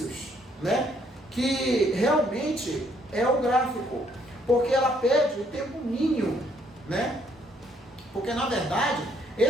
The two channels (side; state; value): both; normal; correlation 0.68